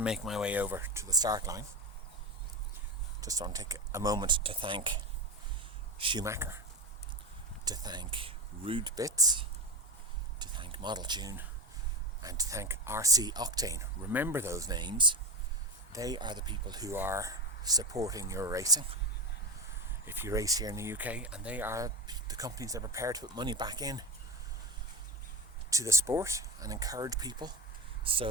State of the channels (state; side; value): normal; both; correlation 0.19